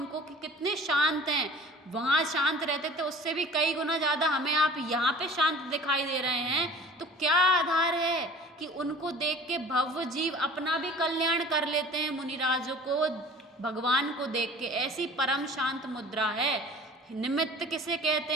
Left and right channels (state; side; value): normal; both; correlation 0.45